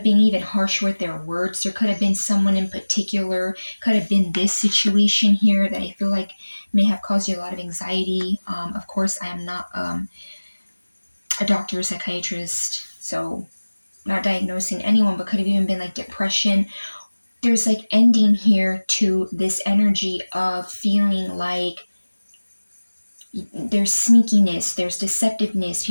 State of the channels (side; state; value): both; inverted; correlation -1.00